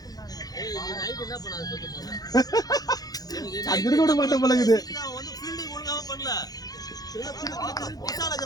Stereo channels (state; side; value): late; right; 0.18 ms